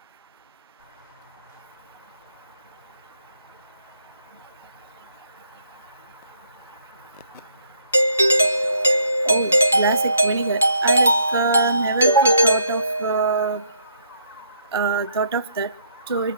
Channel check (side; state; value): both; inverted; correlation -0.69